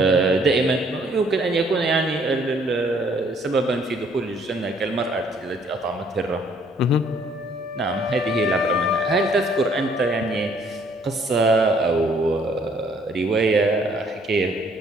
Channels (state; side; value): normal; both; correlation 0.63